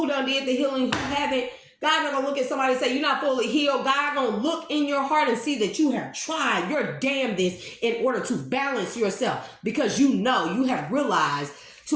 done did the healing, who haven't, God not going to look at somebody and say, you're not fully healed. God going to look in your heart and see that you have tried your damnedest in order to balance yourself, because you know, you have realized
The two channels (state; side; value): identical; both; correlation 1.00